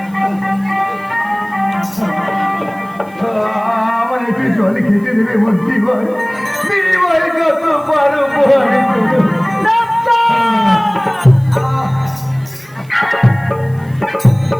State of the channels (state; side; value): noise; right; hiss, 28 dB below the sound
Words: আমার একটু জল খেতে দেবে মোর জীবন বিনিময়ে কত পারো ওঠো